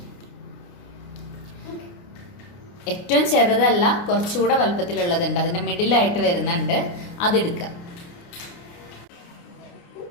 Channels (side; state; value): right; late; 29 ms